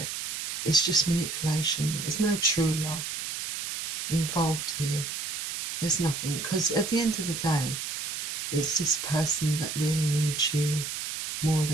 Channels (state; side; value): noise; right; hiss, 4 dB below the sound